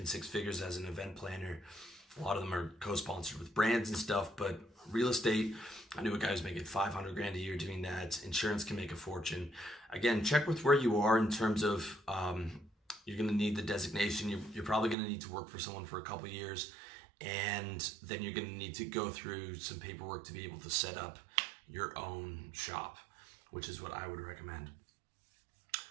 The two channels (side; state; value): left; drops out; at 15.0 s